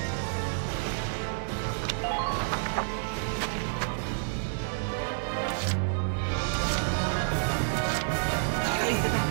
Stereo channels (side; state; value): left; silent; 58 dB below the other